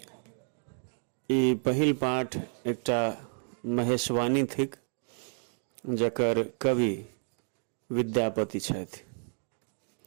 ई पहिल पाठ एकटा महेशवाणी थिक जकर कवि विद्यापति छथि।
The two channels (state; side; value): silent; left; 55 dB below the other